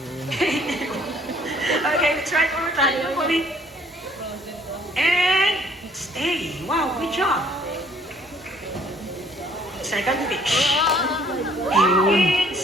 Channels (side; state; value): both; normal; correlation 0.60